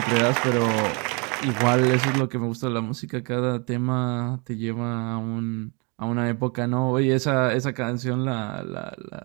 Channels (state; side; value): quieter; left; 32.1 dB